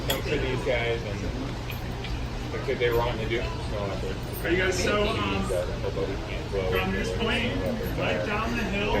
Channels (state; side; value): identical; both; correlation 1.00